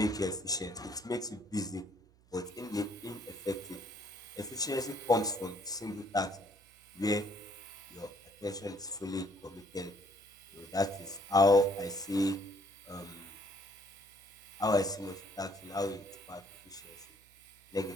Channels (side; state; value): right; noise; hum, 28 dB below the sound